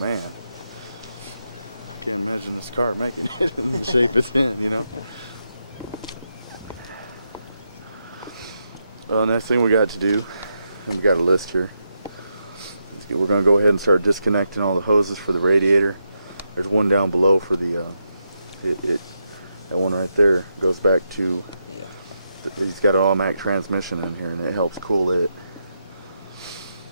I can't imagine this car making it in the shape it's in, you know. Well, next thing we got to do, and we got a list here. We're going to go ahead and start disconnecting all the hoses for the radiator. There's one down below for the that one right there goes back to. Yeah. He's got an automatic transmission in here, and it helps cool it.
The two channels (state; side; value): inverted; both; correlation -0.84